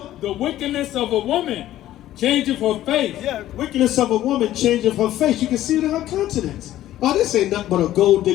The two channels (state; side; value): quieter; right; 13.6 dB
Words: The wickedness of a woman changeth her face. Yeah, wickedness of a woman changeth her face. You can see it in her countenance. Oh, this ain't nothing but a gold